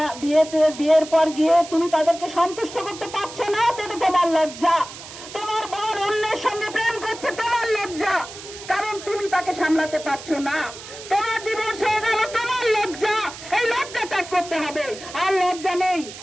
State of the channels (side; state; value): right; noise; hiss, 14 dB below the sound